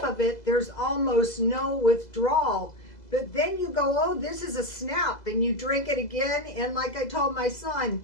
of it, there's almost no withdrawal. But then you go, oh, this is a snap, and you drink it again. And like I told my son,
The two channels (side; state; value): right; late; 2.0 ms